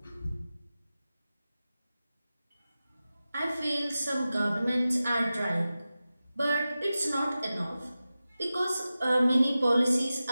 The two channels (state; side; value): inverted; both; correlation -0.94